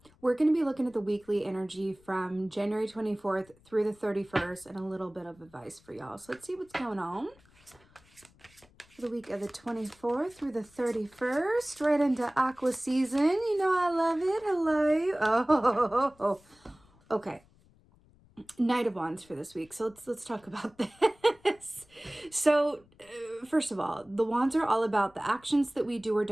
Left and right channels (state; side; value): noise; left; rumble, 29 dB below the sound